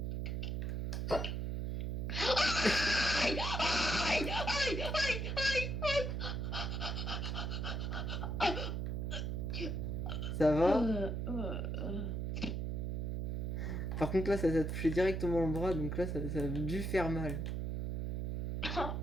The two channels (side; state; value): right; noise; hum, 1 dB below the sound